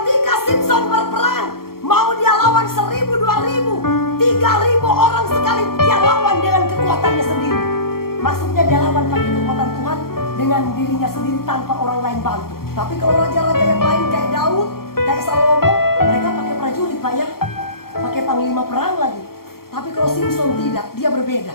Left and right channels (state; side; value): late; right; 0.93 ms